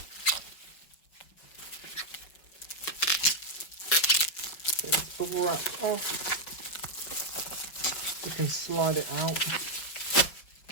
So it's bubble wrapped off. You can slide it out,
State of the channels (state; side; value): late; right; 5.6 ms